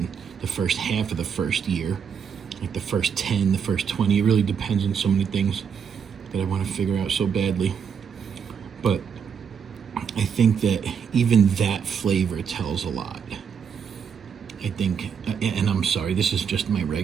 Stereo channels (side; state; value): left; quieter; 7.0 dB